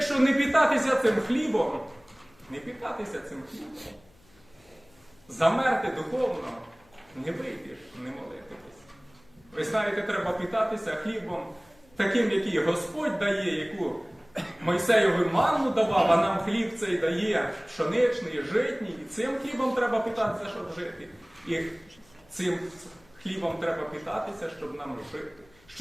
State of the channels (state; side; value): noise; left; hum, 30 dB below the sound